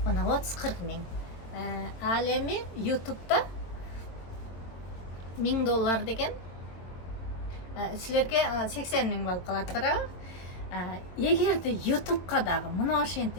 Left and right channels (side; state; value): right; late; 22 ms